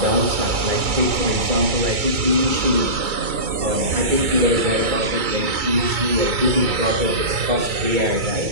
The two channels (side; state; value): left; late; 2.3 ms